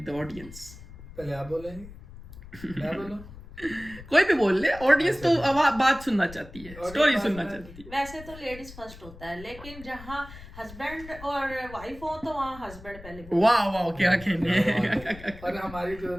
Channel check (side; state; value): left; noise; rumble, 17 dB below the sound